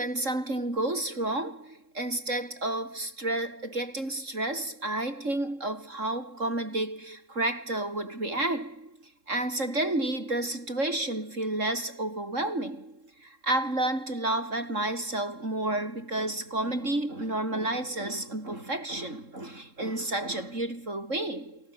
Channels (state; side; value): late; left; 3.7 ms